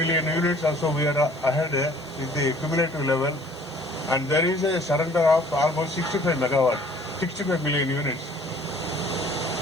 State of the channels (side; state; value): right; noise; hiss, 28 dB below the sound